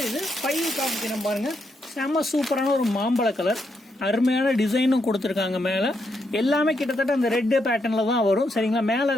இது 5 காமிக்கிறேன் பாருங்க. செம்ம சூப்பரான ஒரு மாம்பழ கலர். அருமையான டிசைனும் கொடுத்துருக்காங்க. மேல எல்லாமே கிட்டத்தட்ட அந்த ரெட் பேட்டர்ன்ல தான் வரும். சரிங்களா, மேல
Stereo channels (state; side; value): normal; both; correlation 0.79